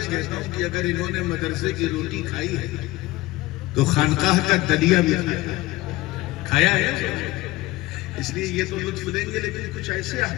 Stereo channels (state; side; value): quieter; right; 18.8 dB